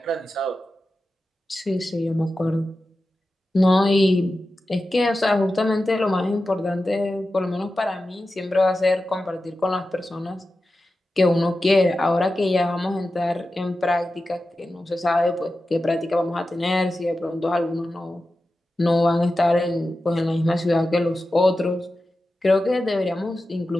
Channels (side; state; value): both; normal; correlation 0.93